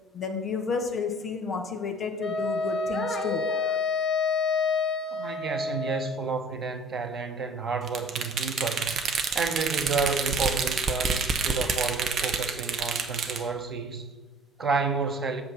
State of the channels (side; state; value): both; normal; correlation 0.49